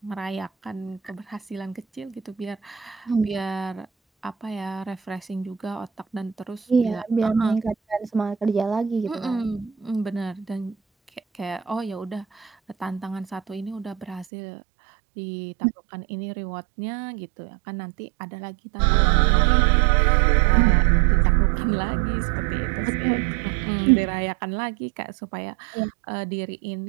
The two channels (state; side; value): drops out; left; at 14.2 s